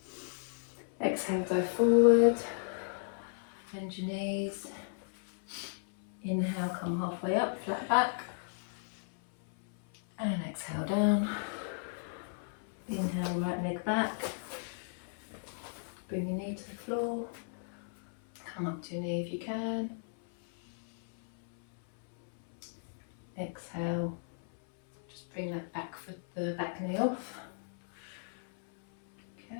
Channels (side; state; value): right; silent; 55 dB below the other